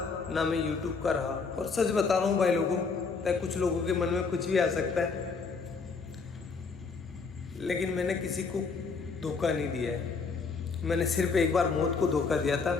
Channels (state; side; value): quieter; right; 4.8 dB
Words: ना मैं यूट्यूब का रहा। और सच बता रहा हूँ भाई लोगों, कुछ लोगों के मन में कुछ भी आ सकता है, लेकिन मैंने किसी को धोखा नहीं दिया है। मैंने सिर्फ एक बार मौत को धोखा दिया था,